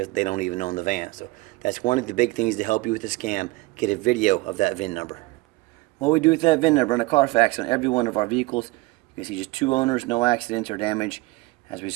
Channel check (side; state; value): left; quieter; 21.9 dB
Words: they don't even own the van. So that's one of the big things to help you with the scam. Get a video of that VIN number. What we do with that VIN number on a Carfax on every one of our vehicles, you can see just 2 owners, no accidents or damage. As we